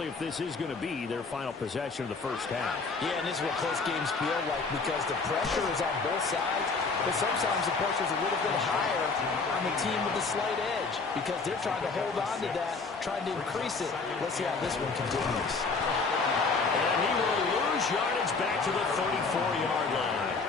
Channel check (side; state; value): right; quieter; 4.3 dB